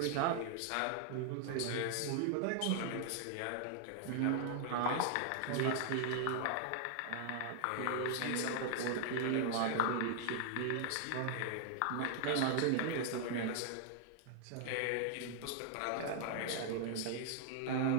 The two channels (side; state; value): both; different; correlation 0.00